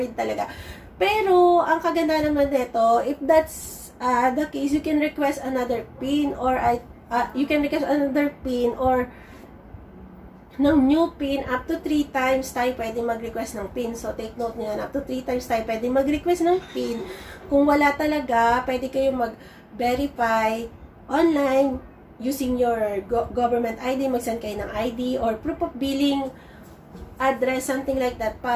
talaga. Pero ang kaganda naman nito, if that's the case, you can request another PIN or ng new PIN. Up to 3 times tayo pwede mag-request ng PIN. So, take note nyo yan. Up to 3 times tayo pwede mag-request ng PIN. Kung wala talaga, pwede kayo mag-verify online using your government ID. Mag-send kayo ng ID or proof of billing address, something like that,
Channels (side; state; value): both; identical; correlation 1.00